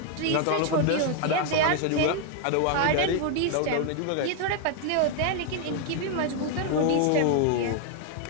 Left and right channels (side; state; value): both; different; correlation 0.01